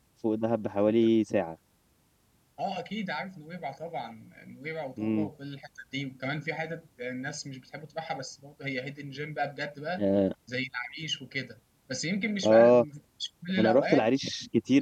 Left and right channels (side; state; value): both; identical; correlation 1.00